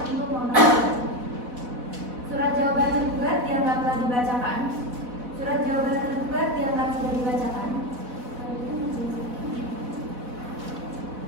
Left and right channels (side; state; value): left; late; 4.1 ms